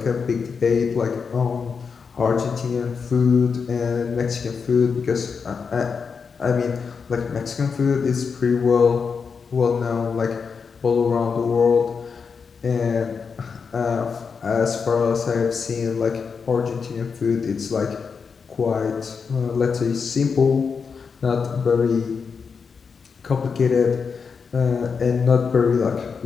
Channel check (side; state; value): right; quieter; 5.7 dB